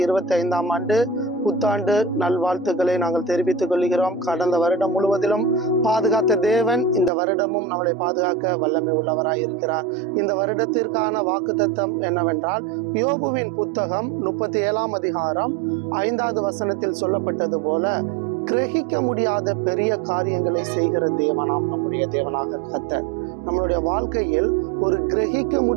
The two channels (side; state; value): left; drops out; at 7.1 s